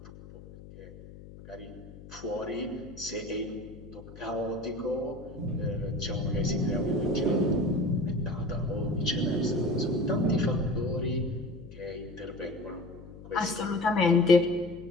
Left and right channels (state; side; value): noise; left; hum, 16 dB below the sound